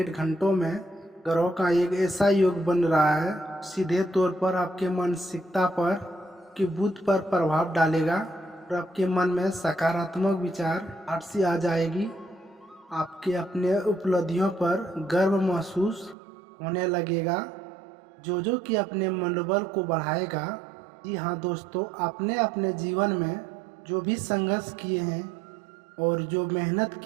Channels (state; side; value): drops out; left; at 16.2 s